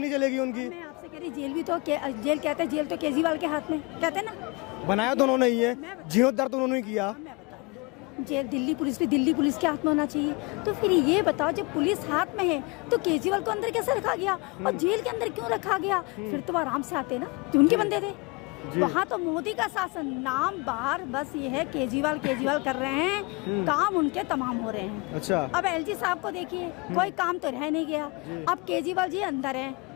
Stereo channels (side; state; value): right; quieter; 27.3 dB